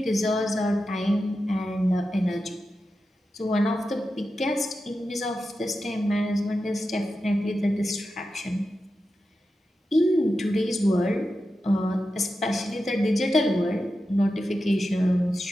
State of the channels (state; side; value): normal; both; correlation 0.91